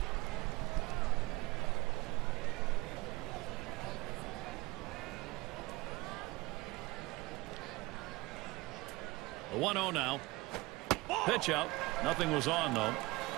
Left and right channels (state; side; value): quieter; left; 21.9 dB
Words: The 1-0 now. Pitch out. Nothing was on, though.